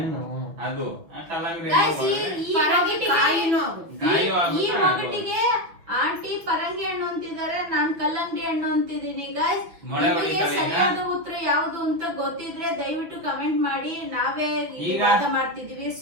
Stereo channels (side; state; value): left; late; 6.0 ms